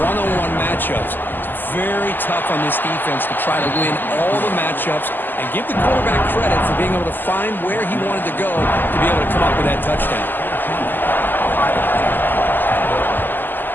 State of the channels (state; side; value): late; right; 0.090 ms